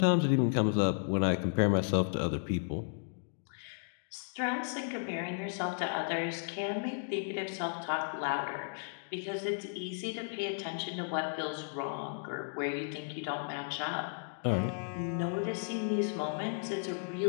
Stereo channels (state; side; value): silent; right; digital silence